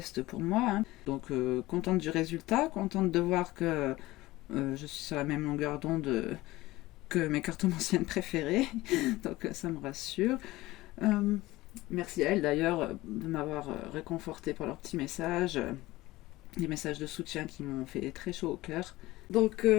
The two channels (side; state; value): right; quieter; 18.5 dB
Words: pour moi, hein. Donc contente du résultat, contente de voir que je suis sur la même longueur d'onde que mes cartomanciennes préférées, donc ça me rassure. Euh, Merci à elles d'ailleurs de m'avoir réconforté par leurs petits messages, des messages de soutien qui m'ont fait très chaud au cœur. Donc